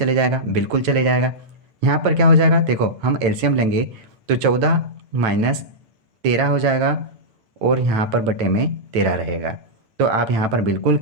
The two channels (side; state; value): left; late; 9.1 ms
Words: जाएगा, बिल्कुल चले जाएगा। यहाँ पर क्या हो जाएगा? देखो हम एलसीएम लेंगे तो 14 माइनस 13 हो जाएगा, और यहाँ पर बटे में 13 रहेगा। तो आप यहाँ पर बिल्कुल